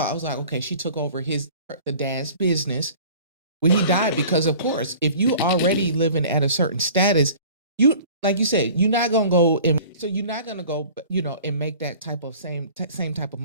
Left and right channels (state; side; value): inverted; both; correlation -0.45